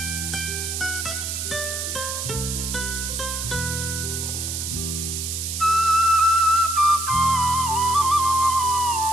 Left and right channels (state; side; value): noise; right; hiss, 4 dB below the sound